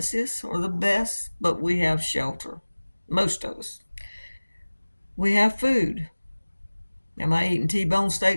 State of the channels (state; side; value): inverted; both; correlation -1.00